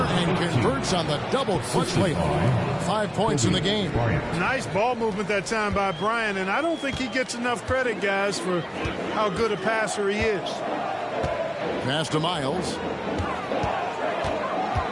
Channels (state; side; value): identical; both; correlation 1.00